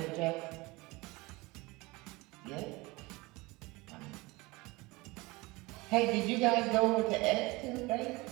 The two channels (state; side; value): quieter; left; 23.0 dB